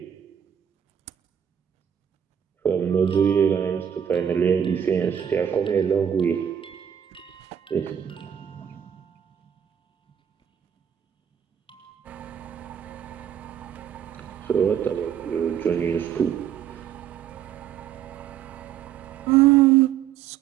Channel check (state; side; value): quieter; left; 9.1 dB